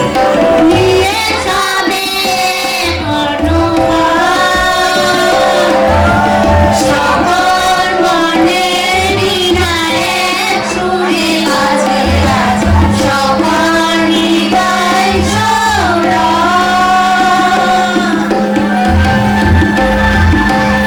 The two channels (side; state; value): both; identical; correlation 1.00